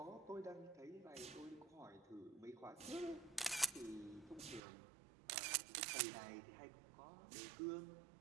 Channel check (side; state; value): left; drops out; at 4.6 s